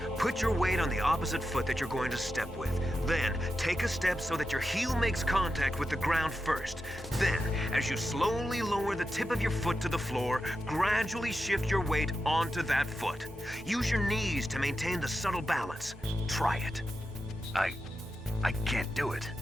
put your weight on the opposite foot that you're going to step with. Then, take a step so that your heel makes contact with the ground first. Then, as you slowly lower the tip of your foot to the floor, gradually shift your weight onto that foot. Use your knees to maintain the subtle balance. Try it. I can't do it.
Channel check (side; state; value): both; normal; correlation 0.89